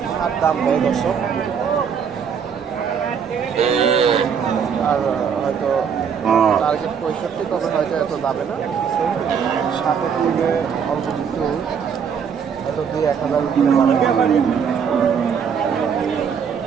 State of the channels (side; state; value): left; quieter; 7.0 dB